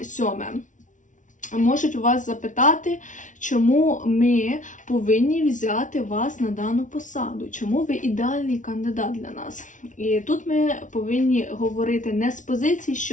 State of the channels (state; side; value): late; right; 0.37 ms